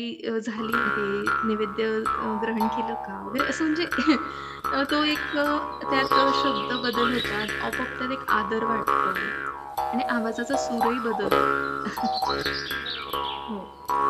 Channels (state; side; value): identical; both; correlation 1.00